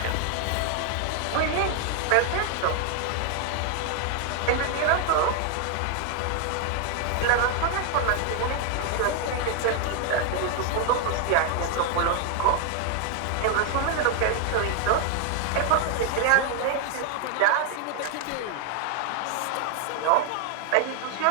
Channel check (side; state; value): both; different; correlation 0.00